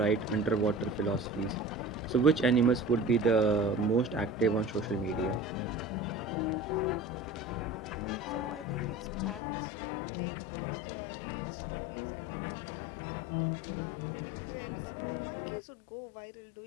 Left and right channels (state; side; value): drops out; right; at 9.4 s